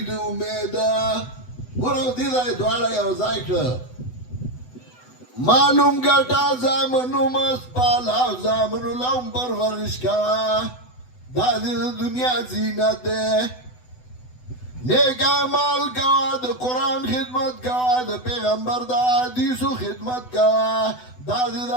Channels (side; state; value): right; late; 8.0 ms